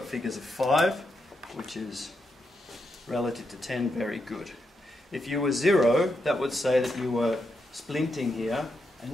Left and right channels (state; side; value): normal; both; correlation 0.83